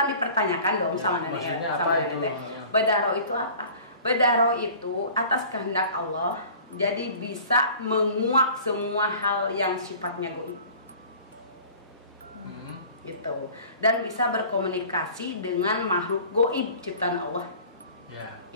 dipertanyakan dong sama nenek teh. Bedah roh itu apa? Bedah roh itu atas kehendak Allah, jadi bisa menguak semua hal yang sifatnya goib. Gitu. Dan bisa berkomunikasi dengan makhluk goib ciptaan Allah.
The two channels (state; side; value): inverted; both; correlation -0.45